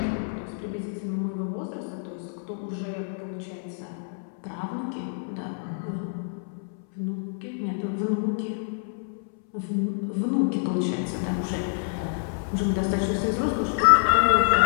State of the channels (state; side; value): silent; right; 60 dB below the other